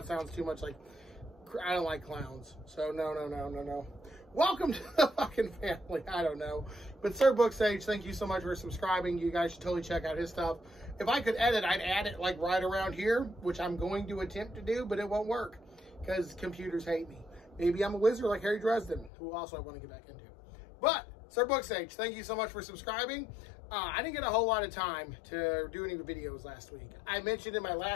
sounds too much like, I don't like clowns. So, no. Welcome to the fucking family. I don't know. But Sir Booksage, thank you so much for subscribing. You guys should totally check out his stuff. If I could edit, I'd add it like right around here, which I'm going to attempt to do, but it won't work because computers hate me. Maybe I'm a wizard like Harry Dresden, who also I want to get back into. But, Sir Booksage, thank you so much for subscribing. I didn't get a whole lot of time to do any videos last week. I mentioned in my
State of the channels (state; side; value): drops out; right; at 19.1 s